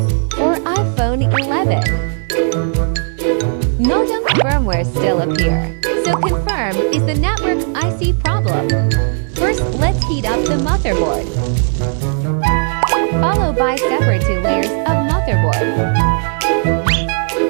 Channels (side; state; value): left; silent; 61 dB below the other